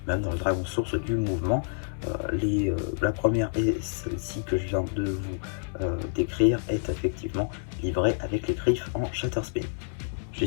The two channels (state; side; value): silent; right; digital silence